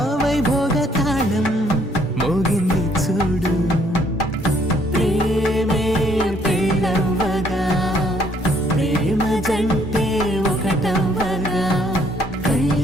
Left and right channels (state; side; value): normal; both; correlation 0.66